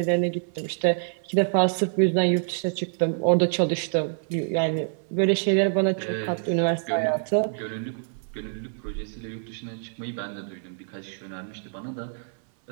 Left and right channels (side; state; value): left; silent; 61 dB below the other